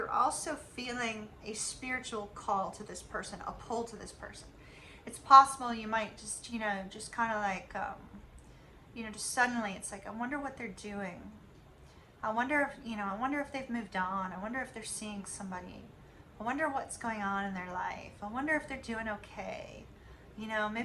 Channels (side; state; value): both; identical; correlation 1.00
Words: also feeling a spiritual call to this person, a pull to this person. It's possible you might just, you know, just kind of like, you know, just suddenly it's like, I wonder what they're doing. I wonder if, you know, I wonder if they've moved on. I wonder if they're seeing somebody. I wonder what's going on in their life. I wonder if they're doing okay. You know,